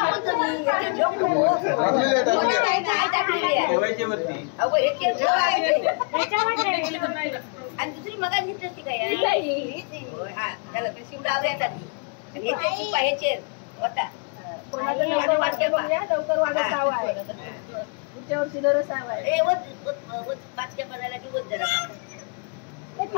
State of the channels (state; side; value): quieter; right; 37.8 dB